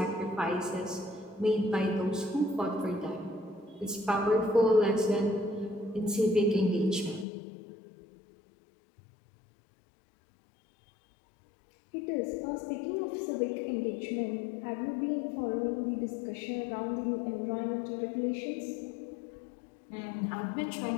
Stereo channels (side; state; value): right; drops out; at 7.2 s